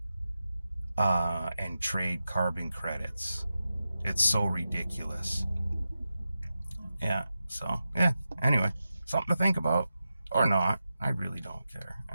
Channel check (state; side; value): inverted; both; correlation -0.91